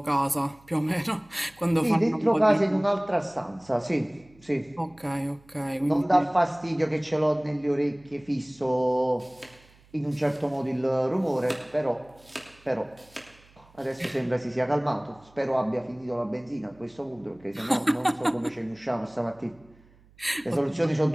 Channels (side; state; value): right; noise; hum, 28 dB below the sound